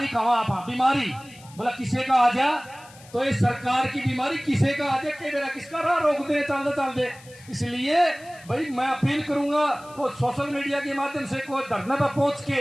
कहा आप बीमारी बोला किसे का आ जा, तो ये सरकार की बीमारी किसे का आ जाए, मेरा किसका राह रोक दे चल दे। इसलिए भाई मैं अपील करूंगा को सोशल मीडिया के माध्यम से कोई धरने पर पहुंच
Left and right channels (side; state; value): left; noise; hiss, 23 dB below the sound